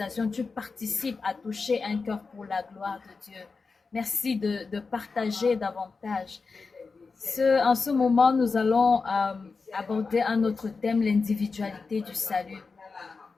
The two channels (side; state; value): right; quieter; 4.5 dB